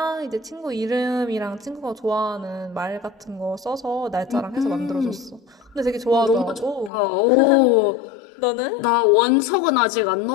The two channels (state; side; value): drops out; right; at 6.9 s